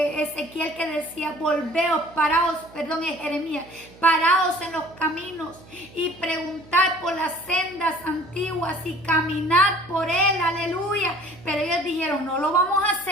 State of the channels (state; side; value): noise; right; hum, 22 dB below the sound